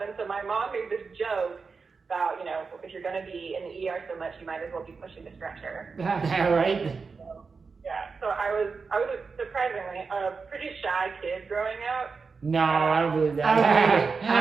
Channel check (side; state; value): left; quieter; 4.8 dB